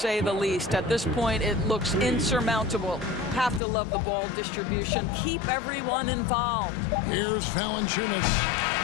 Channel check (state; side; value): drops out; right; at 3.6 s